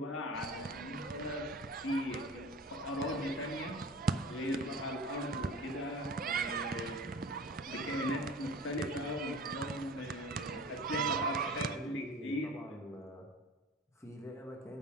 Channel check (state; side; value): normal; both; correlation 0.40